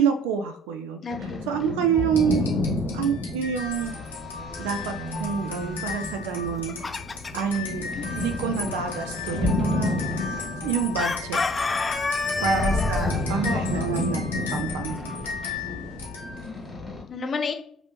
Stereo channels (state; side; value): normal; both; correlation 0.49